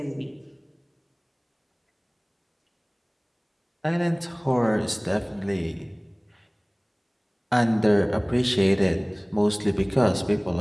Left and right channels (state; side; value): identical; both; correlation 1.00